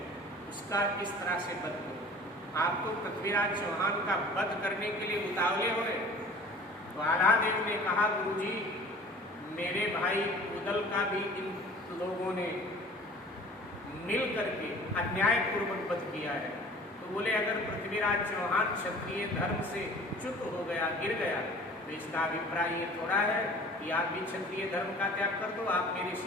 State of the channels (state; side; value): normal; both; correlation 0.45